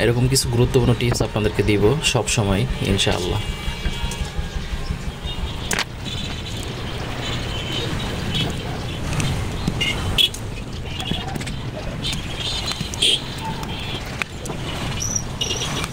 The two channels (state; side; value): identical; both; correlation 1.00